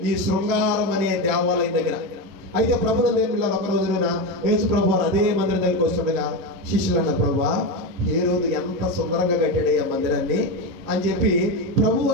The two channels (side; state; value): left; late; 11 ms